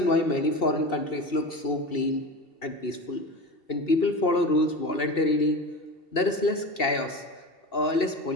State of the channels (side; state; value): right; late; 2.7 ms